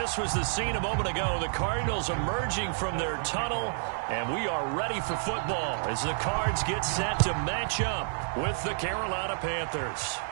was the scene a moment ago. The Cardinals emerging from their tunnel, and we are ready for football as the Cards get set to match up with the Carolina Panthers.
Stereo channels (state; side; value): silent; left; digital silence